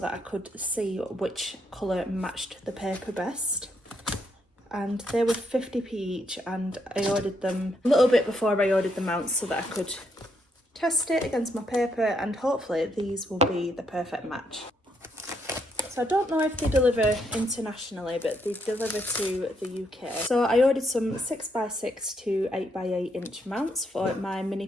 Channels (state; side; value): normal; both; correlation 0.76